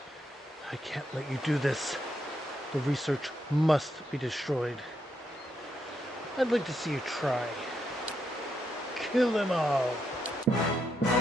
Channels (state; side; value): normal; both; correlation 0.80